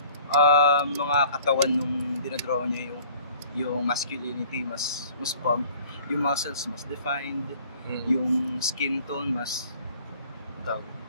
mga katawan nung dinadraw niya, yung masculinity mas pumped, yung muscles mas defined, yung skin tone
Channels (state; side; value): inverted; both; correlation -0.51